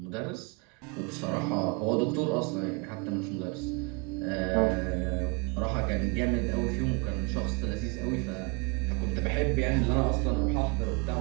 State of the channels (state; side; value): quieter; left; 29.2 dB